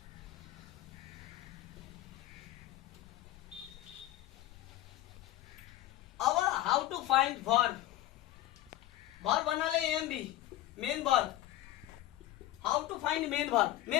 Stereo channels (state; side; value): quieter; right; 14.7 dB